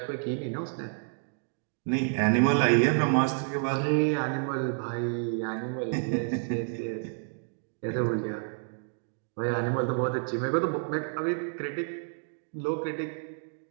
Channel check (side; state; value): left; silent; 58 dB below the other